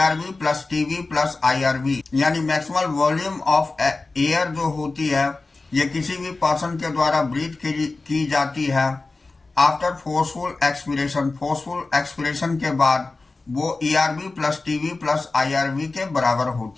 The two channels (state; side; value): quieter; right; 3.5 dB